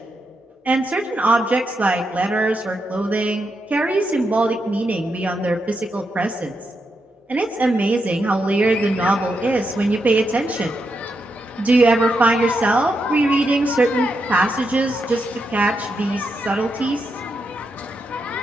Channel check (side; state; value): both; normal; correlation 0.84